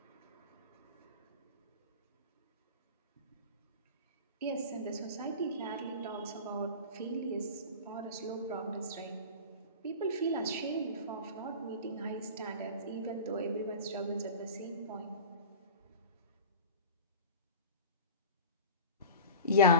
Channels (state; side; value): inverted; both; correlation -0.33